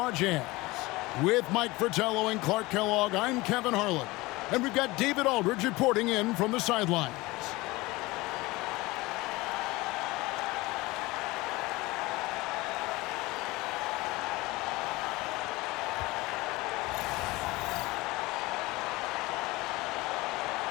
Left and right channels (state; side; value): quieter; right; 21.3 dB